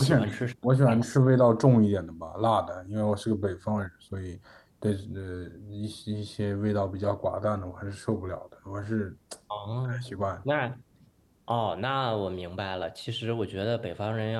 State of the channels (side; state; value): both; identical; correlation 1.00